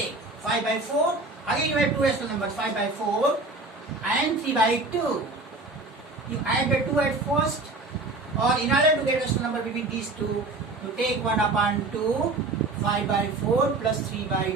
5 by 4. Again you have two rational numbers, 5 by 4 and 3 by 2. You add the 2 at first, or in order to get rational number between these two, you take 1 upon 2, 5 by 4 plus 3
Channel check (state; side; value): quieter; left; 3.2 dB